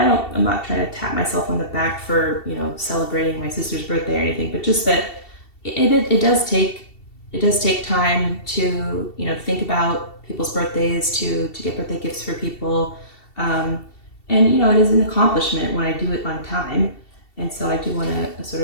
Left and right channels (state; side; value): late; right; 2.7 ms